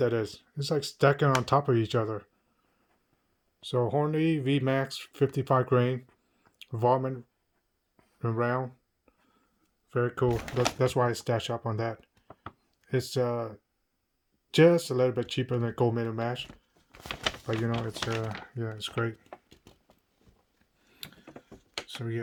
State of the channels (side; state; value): both; identical; correlation 1.00